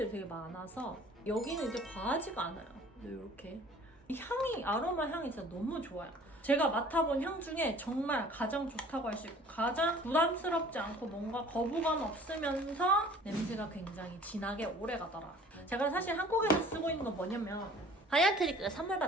되게 많아서 여기는 이제 과하지가 않아요. 이렇게 향이, 아로마 향이 진짜 너무 좋아요. 제가 맡아본 향 중에 정말 가장 좋다고 할 수 있고 가장 부담스럽지 않고 뭔가 거부감 없으면서 냄새가 굉장히 진하게 오래가더라. 제가 사실 한국에서 쓰고 있는 건 뭐냐면 하얀트리크가 선물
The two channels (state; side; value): normal; both; correlation 0.50